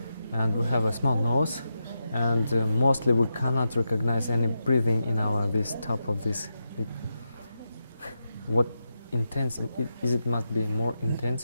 and we have a small nose and mostly we cannot recognize any breathing in our this top of this. What intense is it? Must be more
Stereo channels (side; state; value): both; inverted; correlation -0.88